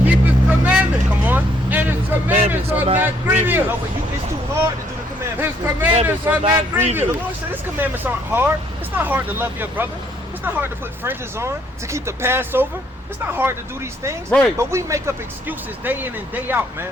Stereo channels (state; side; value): normal; both; correlation 0.68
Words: keep his commandments. Come on. And his commandments are not grievous. No, but it's too hard to do the commandments. His commandments are not The grievous. Lord said his commandments aren't hard. It's not hard to love your brother. It's not hard to put fringes on, to keep the Passover. It's not hard to do these things. Right. But we make up excuses day in and day out,